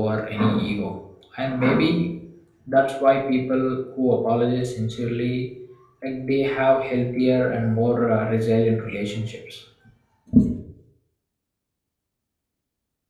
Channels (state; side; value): identical; both; correlation 1.00